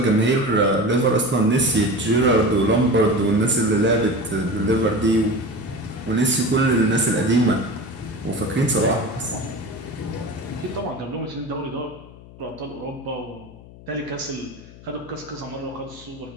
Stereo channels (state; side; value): noise; left; hum, 20 dB below the sound